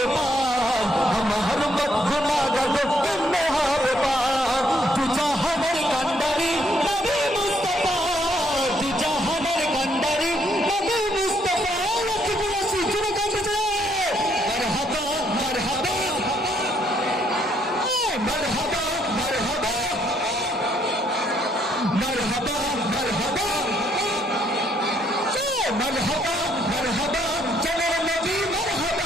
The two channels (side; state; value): both; normal; correlation 0.70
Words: পার আমার মত গুনাহগার কেমনে হবে পার তু জাহানের কান্ডারি নবী মুস্তাফা তু জাহানের কান্ডারি নবী মুস্তাফা লক্ষ্মীপুরা সিজুরে কাঁদছে মারহাবা মারহাবা মারহাবা মারহাবা মারহাবা মারহাবা মারহাবা মারহাবা চলো নবী মারহাবা